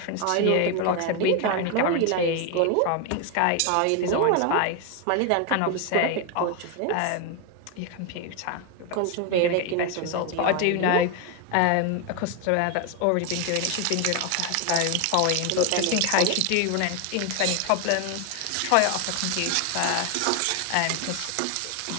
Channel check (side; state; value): both; different; correlation 0.01